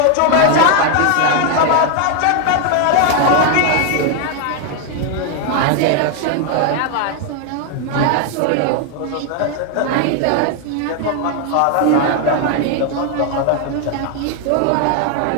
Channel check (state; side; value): different; both; correlation 0.00